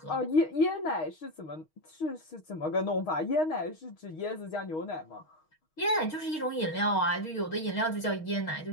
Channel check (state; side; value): late; right; 6.4 ms